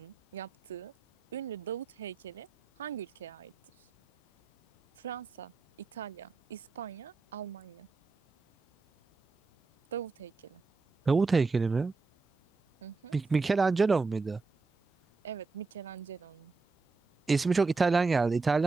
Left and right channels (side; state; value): left; quieter; 4.2 dB